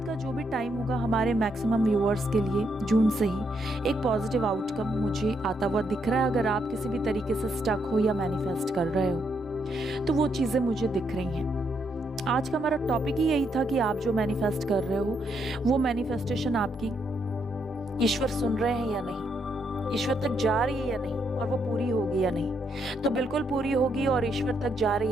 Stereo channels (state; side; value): normal; both; correlation 0.77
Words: का जो भी टाइम होगा हमारे मैक्सिमम व्यूअर्स के लिए, जून से ही एक पॉजिटिव आउटकम मुझे आता हुआ दिख रहा है। अगर आप किसी भी तरीके से स्टक हो या मैनिफेस्ट कर रहे हो तो वो चीज़ें मुझे दिख रही हैं। आज का हमारा टॉपिक ही यही था कि आप जो मैनिफेस्ट कर रहे हो वो मैनिफेस्टेशन आपकी ईश्वर सुन रहे हैं या नहीं, ईश्वर तक जा रही है या नहीं, और वो पूरी होगी या नहीं। तो बिल्कुल पूरी होगी और ईश्वर तक जा रही